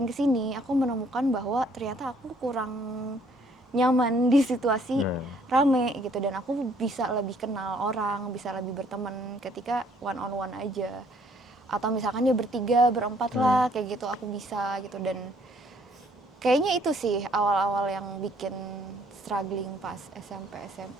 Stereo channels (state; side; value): normal; both; correlation 0.63